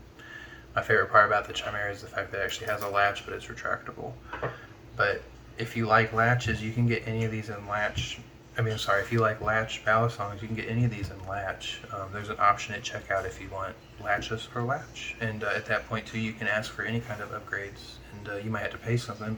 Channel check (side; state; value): both; identical; correlation 1.00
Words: My favorite part about the Chimera is the fact that it actually has a latch, but it's retractable. But if you like latches, you can get any of these in latch. If you like latch Balisongs, you can get any of these in latch. There's an option at checkout if you want latchless or latch. And at that point, too, you can ask for any kind of upgrades. And you might have to pay something,